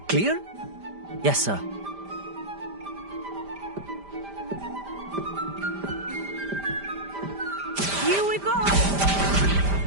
Clear? Yes, sir. Here we go!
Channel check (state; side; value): late; left; 5.0 ms